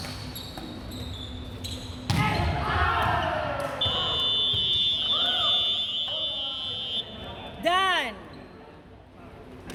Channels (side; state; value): both; identical; correlation 1.00